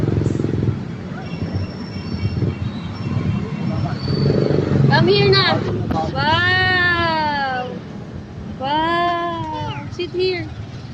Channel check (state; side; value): identical; both; correlation 1.00